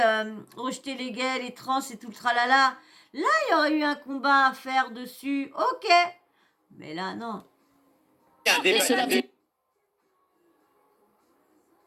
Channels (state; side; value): identical; both; correlation 1.00